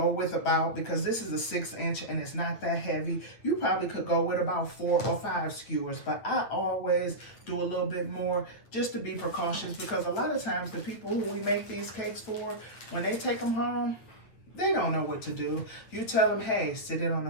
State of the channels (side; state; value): right; late; 8.7 ms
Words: with about, because this is a 6-inch and it's not that heavy, you probably could go with about 4 or 5 skewers, but I always do a little bit more just to be precautious, because a lot of times the people who we make these cakes for, when they take them home, they don't know what to do. You tell them, hey, sit it on the